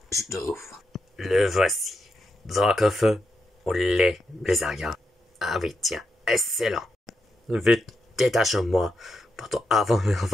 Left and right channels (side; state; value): both; normal; correlation 0.84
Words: je t'ouvre. Le voici. Dracofeu au lait, Blizzard. Ah oui, tiens, excellent. Vite, détache-moi, pourtant avant on